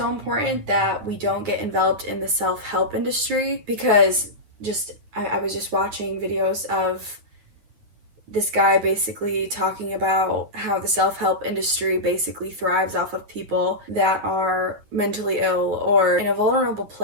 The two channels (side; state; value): left; late; 9.4 ms